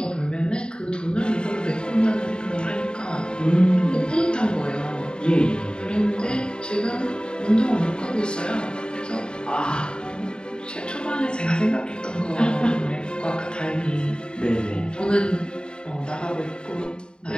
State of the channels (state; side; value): late; right; 0.050 ms